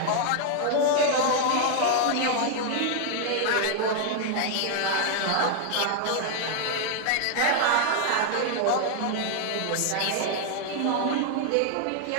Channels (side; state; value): both; different; correlation 0.00